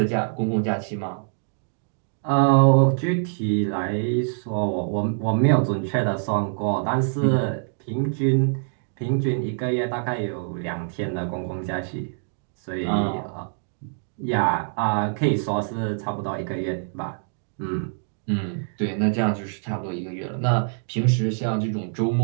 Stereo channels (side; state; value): left; silent; digital silence